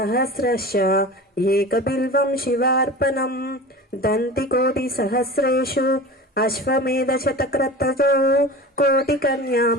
ఏకబిల్వం శివార్పణం దంతికోటి సహస్రేషు అశ్వమేధ శతక్రతజో కోటికన్యా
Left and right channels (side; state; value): both; normal; correlation 0.34